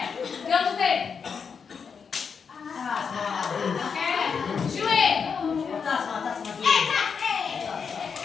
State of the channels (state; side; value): quieter; right; 6.1 dB